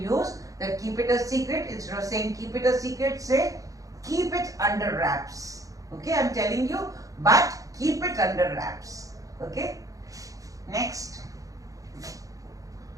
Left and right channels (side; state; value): left; late; 0.17 ms